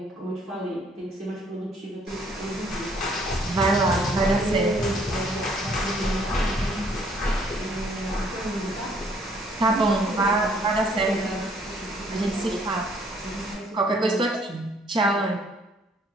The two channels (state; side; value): normal; both; correlation 0.63